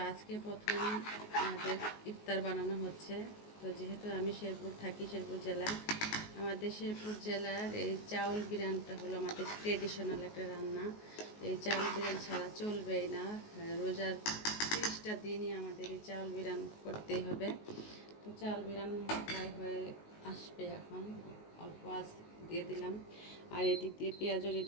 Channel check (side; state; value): right; late; 19 ms